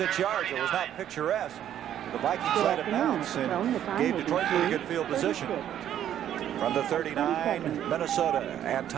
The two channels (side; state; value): left; quieter; 10.7 dB